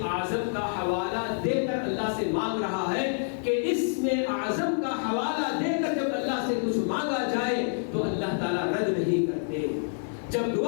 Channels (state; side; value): silent; right; digital silence